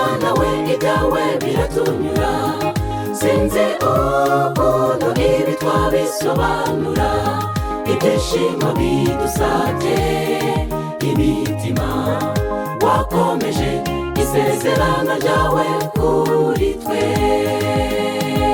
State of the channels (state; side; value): identical; both; correlation 1.00